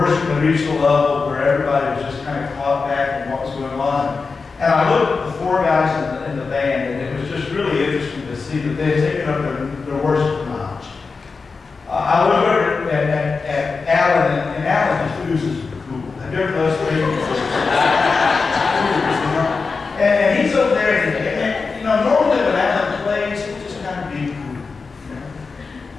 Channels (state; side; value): quieter; right; 4.6 dB